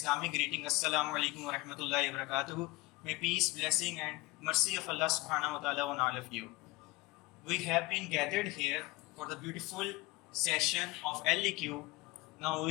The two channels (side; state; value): right; quieter; 21.8 dB